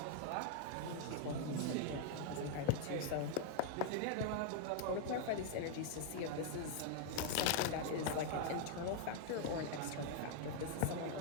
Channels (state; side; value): different; both; correlation 0.00